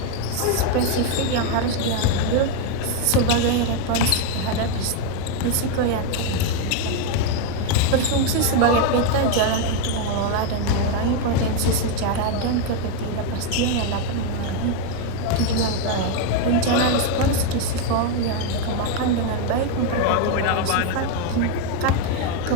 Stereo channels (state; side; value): different; both; correlation 0.02